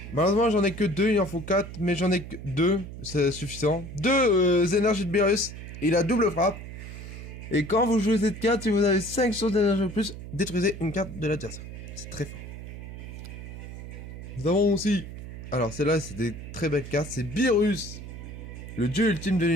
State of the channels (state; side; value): noise; right; hum, 11 dB below the sound